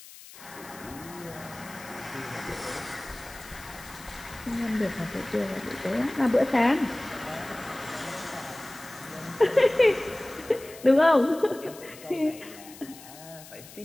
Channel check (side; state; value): left; noise; hiss, 18 dB below the sound